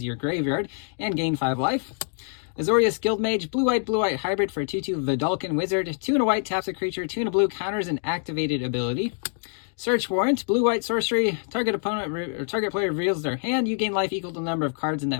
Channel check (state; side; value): silent; right; 61 dB below the other